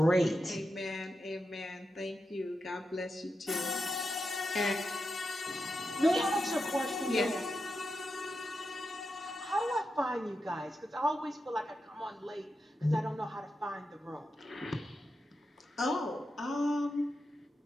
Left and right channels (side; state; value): both; normal; correlation 0.88